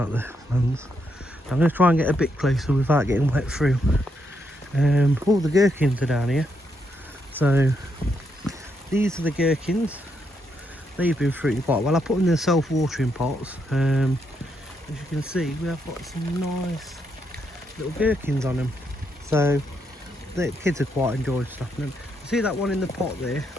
of the plants. I'm going to try and get a bit closer without getting wet through. All the gherkins are down here. So these are the gherkins. They've been fruiting quite well. I put them in the self-watering pots. As you can see, we have got some nice little gherkins on them. So the kids are quite enjoying stuffing them. See that one in the pot there?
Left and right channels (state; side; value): normal; both; correlation 0.79